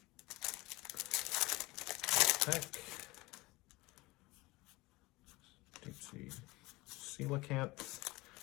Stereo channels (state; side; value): quieter; right; 21.6 dB